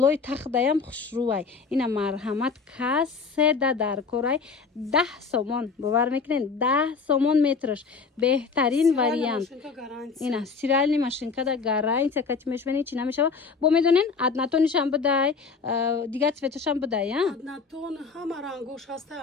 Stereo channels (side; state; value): right; quieter; 5.0 dB